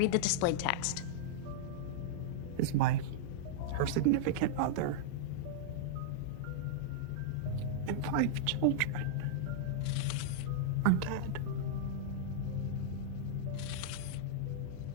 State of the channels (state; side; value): different; both; correlation -0.02